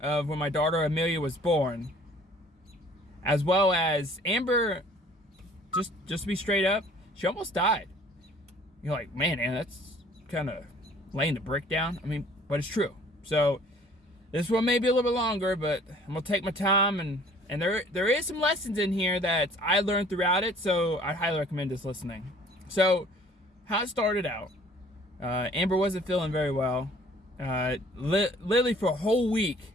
of when my daughter Amelia was born, as well as Amber. Just to be straight up, she almost died. You're like, man, that's kind of laying the brick down. I mean, but it's true. So this one may be a little bit longer, but I'm gonna take my time, and there is some lessons in here that I learned throughout it. So I highly recommend this listening. So, how it started out, Amber wasn't feeling very well. Literally for a whole week,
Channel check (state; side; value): normal; both; correlation 0.54